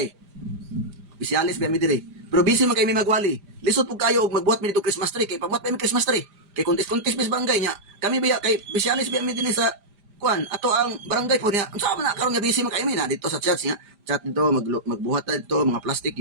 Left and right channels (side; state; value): left; late; 5.0 ms